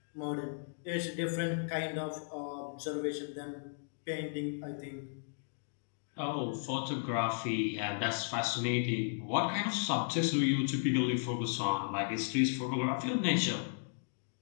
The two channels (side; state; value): right; silent; digital silence